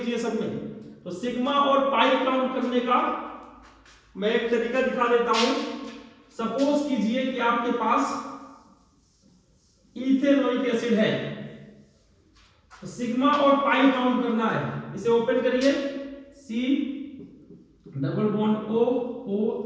सब में। तो सिग्मा और पाई काउंट करने का मैं एक तरीका दिखा देता हूं। सपोज कीजिए कि आपके पास इथेनोइक एसिड है, तो सिग्मा और पाई काउंट करना है। इसे ओपन करिए, C double bond O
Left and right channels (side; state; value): both; identical; correlation 1.00